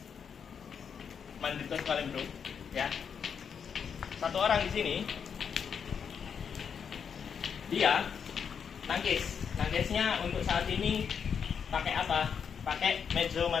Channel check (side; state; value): right; quieter; 7.0 dB